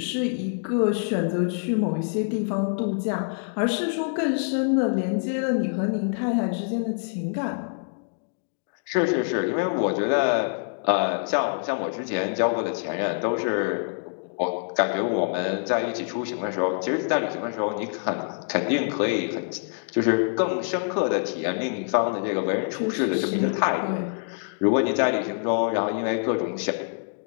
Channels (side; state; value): right; silent; digital silence